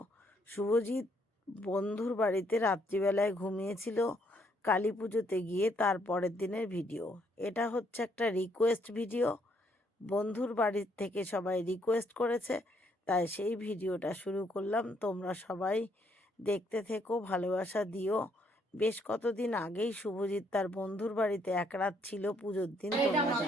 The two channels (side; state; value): both; normal; correlation 0.71